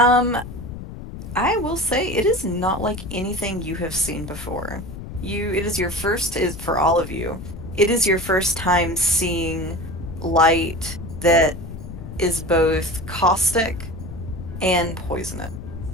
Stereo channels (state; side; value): noise; left; rumble, 11 dB below the sound